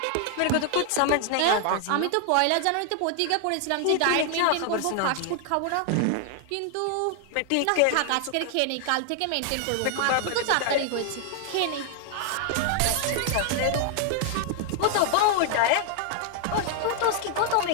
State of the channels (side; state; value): both; different; correlation 0.00